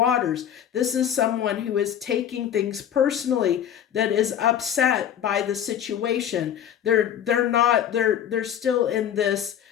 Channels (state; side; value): quieter; right; 9.6 dB